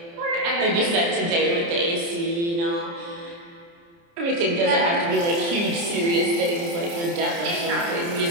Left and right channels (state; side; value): late; left; 29 ms